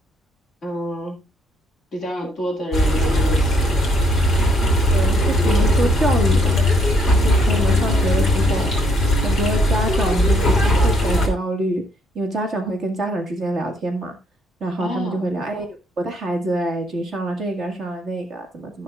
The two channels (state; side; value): normal; both; correlation 0.69